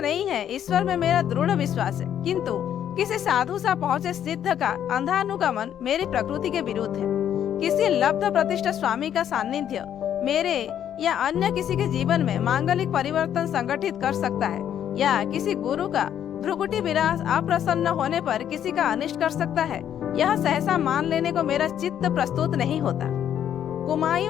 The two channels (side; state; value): right; quieter; 9.9 dB